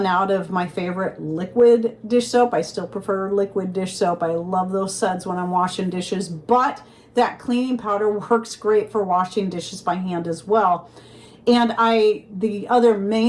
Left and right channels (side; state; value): both; identical; correlation 1.00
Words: out of my favorite liquid dish soap. I still prefer liquid dish soap. I love those suds when I'm washing dishes, but that cleaning powder works great for washing dishes by hand as well. And the other